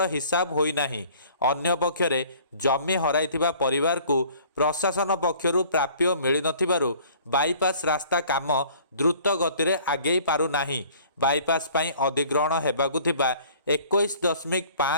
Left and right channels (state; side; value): inverted; both; correlation -0.52